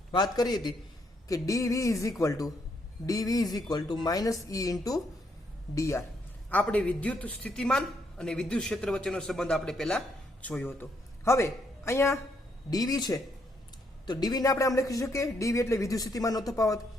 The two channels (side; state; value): both; normal; correlation 0.74